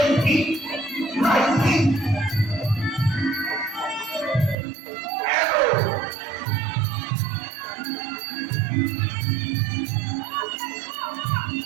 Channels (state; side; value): drops out; left; at 4.5 s